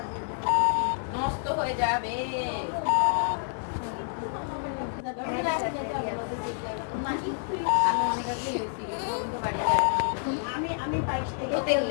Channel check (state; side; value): silent; right; digital silence